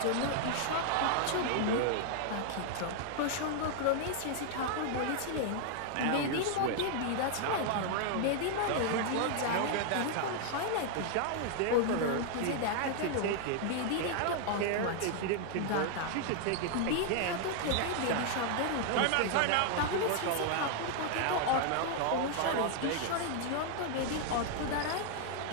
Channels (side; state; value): both; different; correlation 0.00